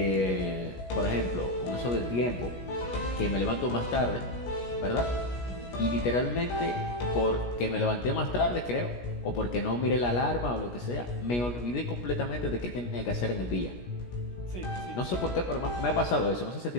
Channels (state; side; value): late; right; 17 ms